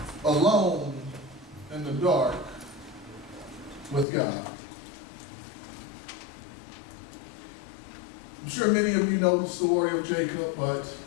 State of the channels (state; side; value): drops out; right; at 4.0 s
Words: Alone in the dark with God. I'm sure many of you know the story of Jacob, but